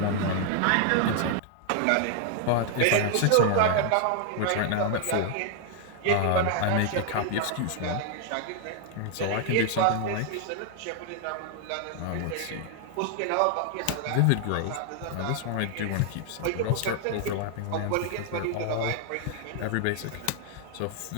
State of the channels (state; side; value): different; both; correlation 0.00